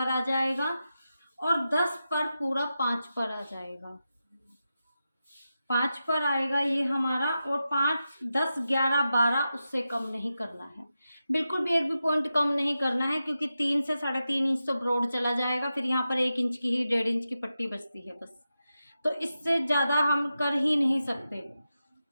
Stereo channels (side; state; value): both; inverted; correlation -0.91